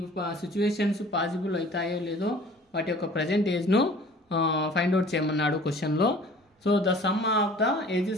situations possible అవుతాయో లేదో వాటి యొక్క present ఏజ్ను find out చేయమన్నాడు క్వశ్చన్లో. So the sum of the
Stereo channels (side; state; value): both; normal; correlation 0.48